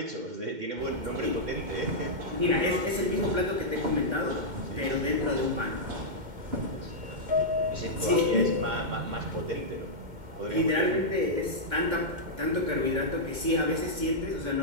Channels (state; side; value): late; left; 2.1 ms